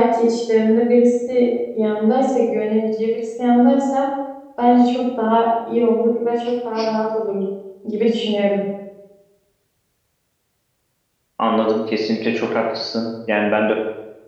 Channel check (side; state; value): both; identical; correlation 1.00